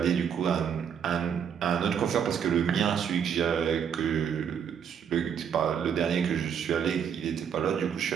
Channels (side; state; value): left; quieter; 7.9 dB